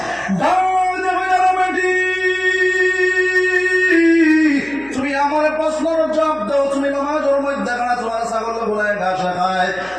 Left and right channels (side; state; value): left; noise; hum, 26 dB below the sound